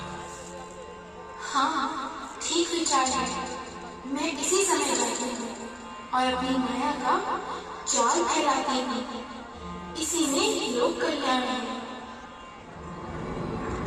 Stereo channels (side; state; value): both; identical; correlation 1.00